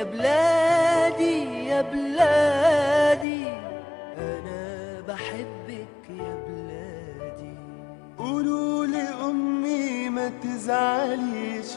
بلادي يا بلادي أنا بحبك يا بلادي. قولوا لأمي ما تزعليش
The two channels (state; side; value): drops out; right; at 3.2 s